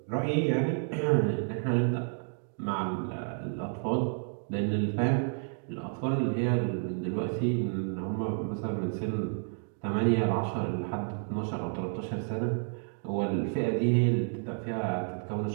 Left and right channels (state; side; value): silent; left; 57 dB below the other